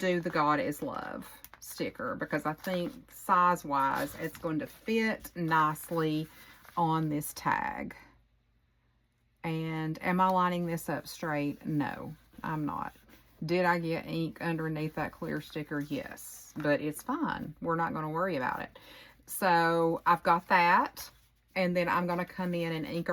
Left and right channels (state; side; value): identical; both; correlation 1.00